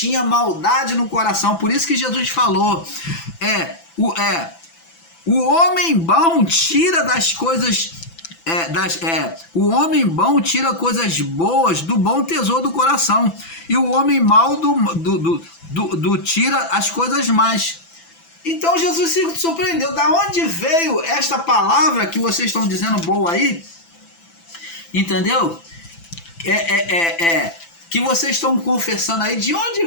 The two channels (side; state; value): right; late; 6.0 ms